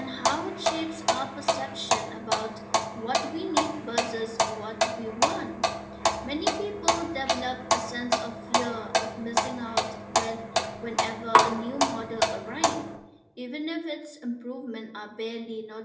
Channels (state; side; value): identical; both; correlation 1.00